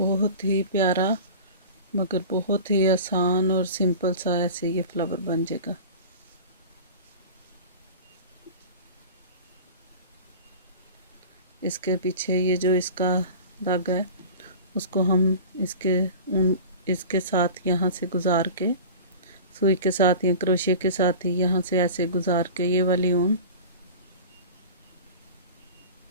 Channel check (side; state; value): both; inverted; correlation -0.36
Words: ही प्यारा मगर बहुत ही आसान और सिंपल सा ऐसे ये फ्लावर बन जाएगा। इसके पीछे ये जो इसका धागा है उसको हम इसके साथ यहाँ से गुजार के सुई के साथ या क्रोशिया के साथ ही यहाँ से ऐसे गुजार के ये वाली ऊन